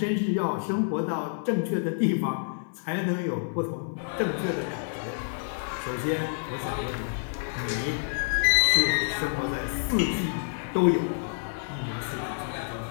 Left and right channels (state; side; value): silent; right; 59 dB below the other